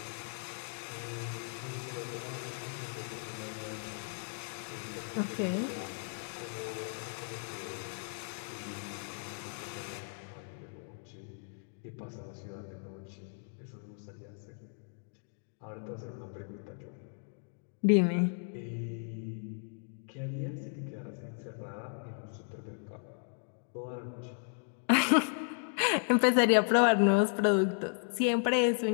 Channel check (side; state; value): right; silent; 54 dB below the other